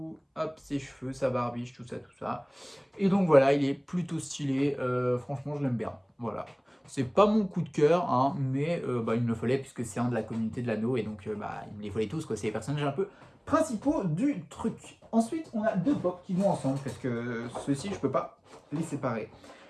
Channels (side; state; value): both; identical; correlation 1.00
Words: hop, ses cheveux, sa barbiche, tout ça, tout ça. Et donc voilà, il est plutôt stylé. Franchement, je l'aime bien. Voilà. C'est pas mon coup de cœur, hein, mais il me le fallait puisque c'est un de la communauté de l'anneau et donc il me les fallait tous, quoi. C'est les personnages un peu principaux du truc. Ensuite, on a deux pop qui vont ensemble parce que ceux-ci, je peux pas les séparer.